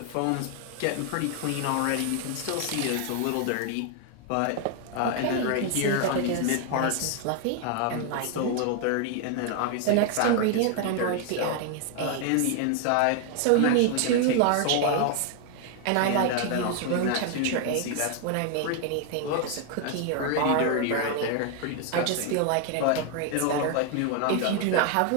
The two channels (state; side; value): different; both; correlation 0.00